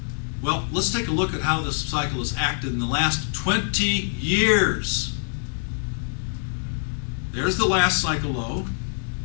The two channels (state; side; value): silent; right; 59 dB below the other